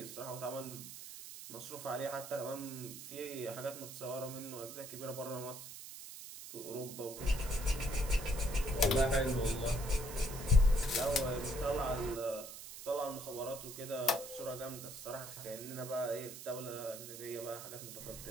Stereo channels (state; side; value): noise; right; hiss, 11 dB below the sound